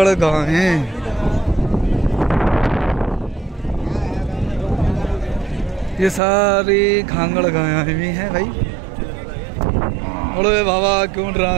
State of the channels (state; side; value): drops out; left; at 6.2 s